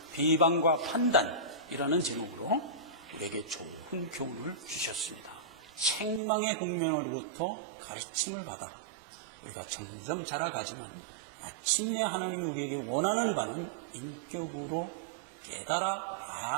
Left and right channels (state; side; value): drops out; left; at 6.2 s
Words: 비방과 판단이라는 제목으로 우리에게 좋은 교훈을 주셨습니다. 책망의 국면으로부터 가르침을 받아 우리가 점점 자라가지만 마침내 하나님이 우리에게 원하는 바는 인격으로 깨달아